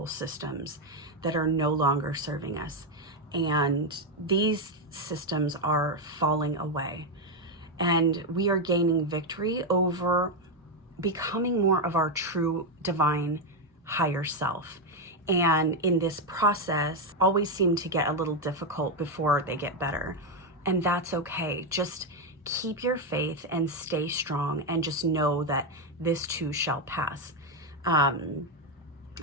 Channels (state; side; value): normal; both; correlation 0.05